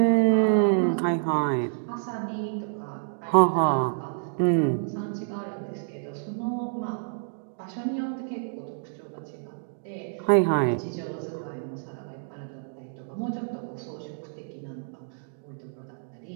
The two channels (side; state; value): left; silent; digital silence